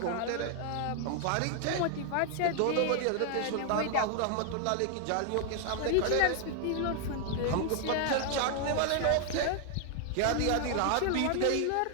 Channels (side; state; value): both; different; correlation 0.00